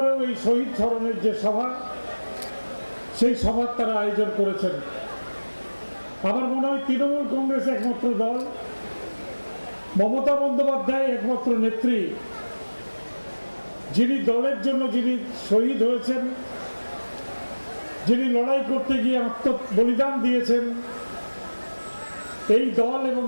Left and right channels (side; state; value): both; inverted; correlation -1.00